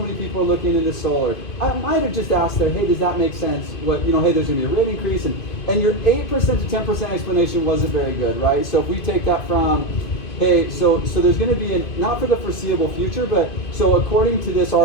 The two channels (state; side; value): late; right; 2.5 ms